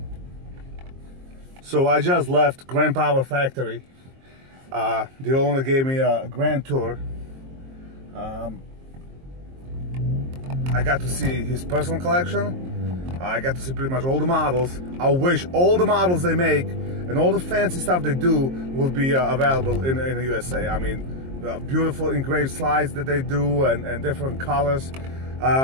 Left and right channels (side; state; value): left; late; 22 ms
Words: So I just left Grand Power Factory. The owner gave me a grand tour. I got to see his personal collection. I got to see pretty much all the models. I wish all the models they make and all the fancy stuff they do will be available in the USA. I mean, beautiful engraved slides that they do and different colors.